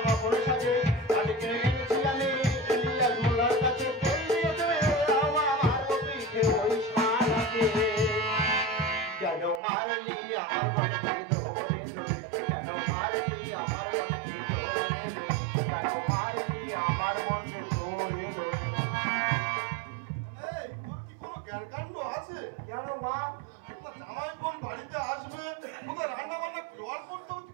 ফুল সাজে। কাছে কিনে এনেছি আমি ইলিয়াস মোল্লার কাছে, কেন মারলি আমার বরকে ধরে ধরে, কেন মারলি আমার বরকে ধরে ধরে, কেন মারলি আমার বরকে ধরে ধরে। এই তোর কি কোনো জ্ঞানকাণ্ড আছে? কেন মা? জামাই বোন বাড়িতে আসবে, কোথায় রান্না বান্না জোয়ার করতে হবে,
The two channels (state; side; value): drops out; left; at 9.6 s